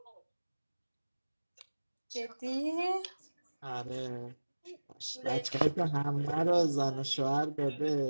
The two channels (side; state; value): both; inverted; correlation -1.00